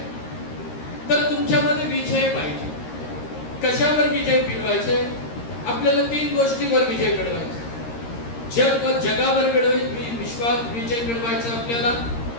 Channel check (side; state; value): right; late; 13 ms